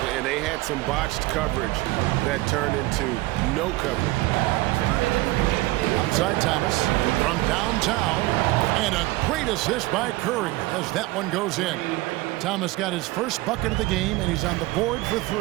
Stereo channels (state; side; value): quieter; left; 19.4 dB